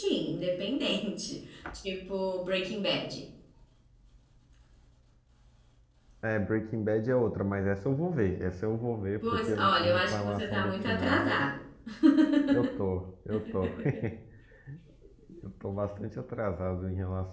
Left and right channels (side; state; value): both; identical; correlation 1.00